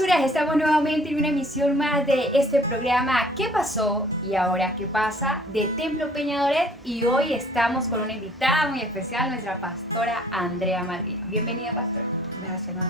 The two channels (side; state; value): both; normal; correlation 0.56